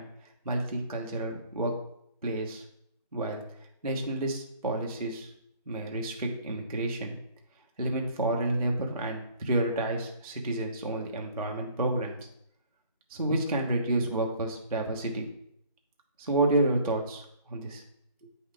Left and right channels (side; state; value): both; inverted; correlation -0.55